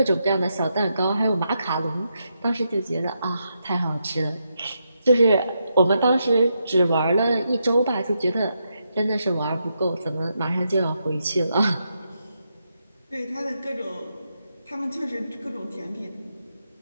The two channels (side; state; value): both; inverted; correlation -0.82